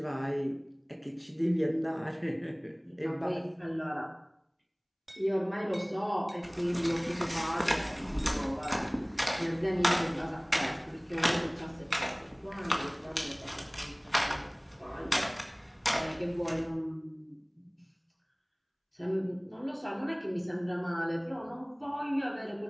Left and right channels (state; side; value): identical; both; correlation 1.00